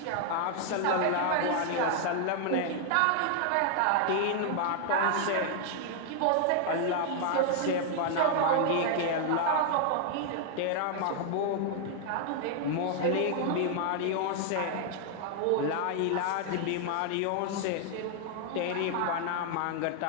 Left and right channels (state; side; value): different; both; correlation 0.00